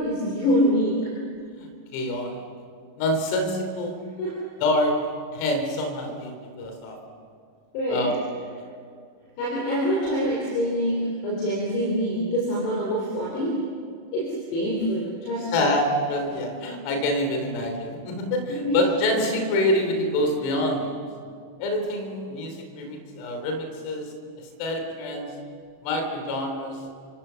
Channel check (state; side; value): late; right; 37 ms